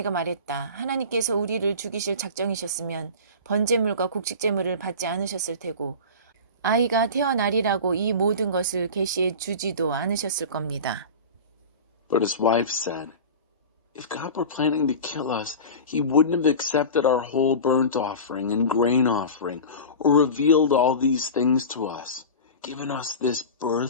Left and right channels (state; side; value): inverted; both; correlation -0.32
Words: 말했다. 하나님께서 우리를 죽이실 작정이셨으면 번제물과 곡식제물을 받지 않으셨을 테고 아이가 태어나리라고 이 모든 것을 계시해 주지도 않으셨을 겁니다. But his wife said, If God were planning to kill us, he wouldn't have accepted our whole burnt offering and grain offering, or revealed all these things to us, given us this